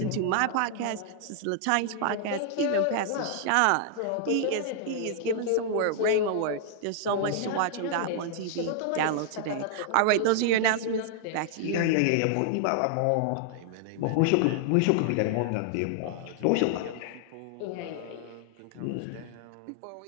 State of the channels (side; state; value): both; different; correlation -0.01